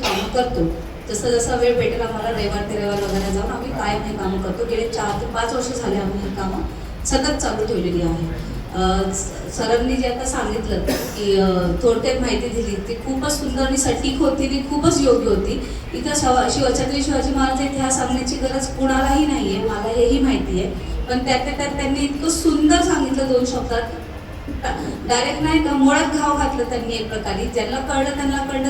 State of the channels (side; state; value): both; identical; correlation 1.00